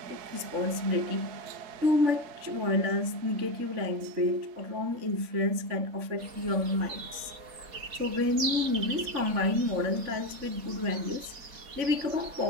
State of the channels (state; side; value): late; left; 3.6 ms